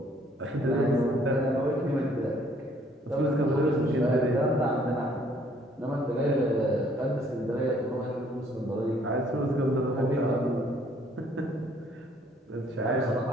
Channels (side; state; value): both; normal; correlation 0.62